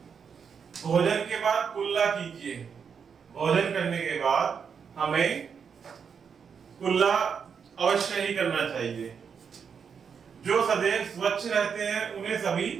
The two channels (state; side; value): quieter; left; 6.6 dB